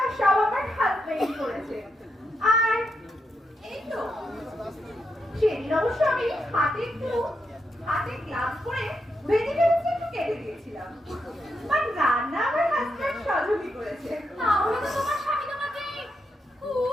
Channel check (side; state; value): both; normal; correlation 0.82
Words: সব আমার হাজবেন্ড করেছে। আর এই তো সেদিন অবশ্য আমি হাতে গ্লাভস পরে ভেজিটেবলস একটু কেটে দিয়েছিলাম। আর রান্না আমার হাজবেন্ড সহযোগী করেছে। তাহলে তো তোমার স্বামী তোমাকে